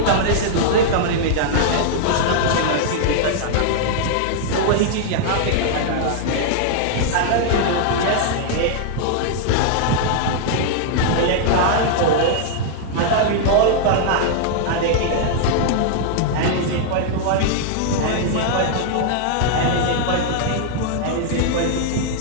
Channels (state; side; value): different; both; correlation -0.01